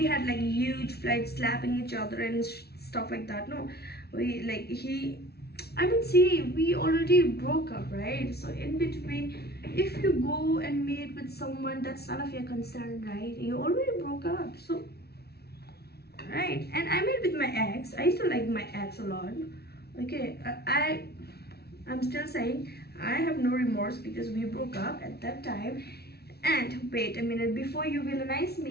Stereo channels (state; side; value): late; right; 0.46 ms